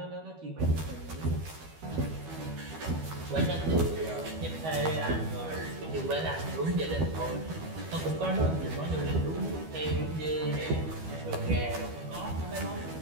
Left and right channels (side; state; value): left; late; 12 ms